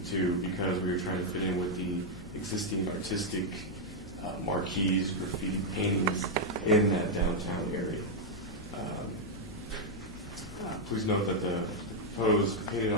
to, because we were trying to fit in with the existing artistic marquees, graffiti paintings in that downtown area. Please note that the proposed painted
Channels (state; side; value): noise; left; hum, 17 dB below the sound